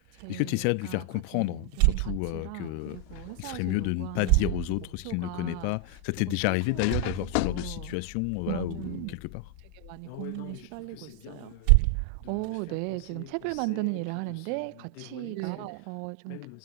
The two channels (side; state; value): both; different; correlation 0.01